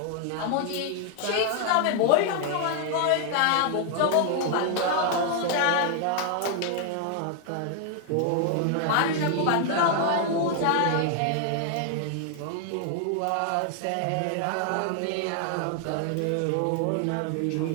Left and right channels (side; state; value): both; different; correlation 0.00